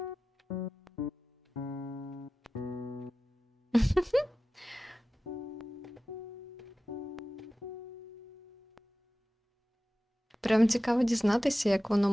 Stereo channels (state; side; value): normal; both; correlation 0.95